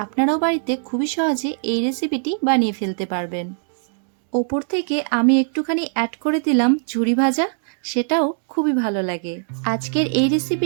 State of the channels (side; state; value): left; silent; 65 dB below the other